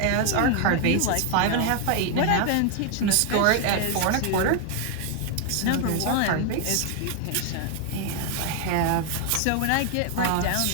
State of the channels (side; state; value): both; different; correlation 0.00